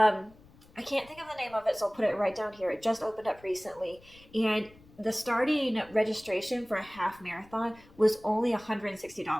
I can't think of the name of it, so I'll put it right down here. It just opened up recently. And the starting registration for a half marathon was only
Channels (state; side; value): noise; left; rumble, 25 dB below the sound